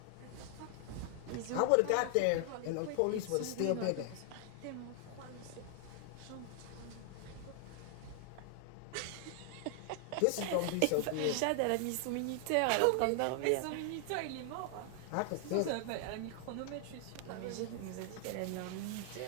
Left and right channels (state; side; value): different; both; correlation 0.00